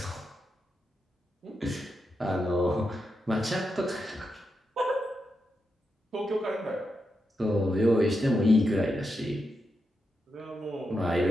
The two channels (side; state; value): both; normal; correlation 0.86